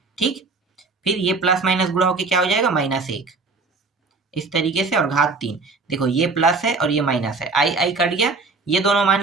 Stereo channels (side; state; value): left; quieter; 4.0 dB